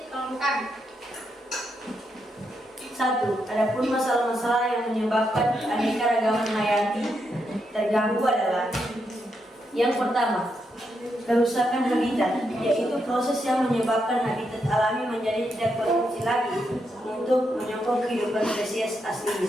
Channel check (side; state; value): both; normal; correlation 0.81